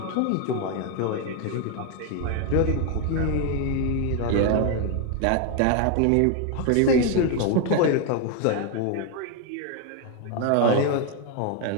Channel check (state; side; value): different; both; correlation 0.01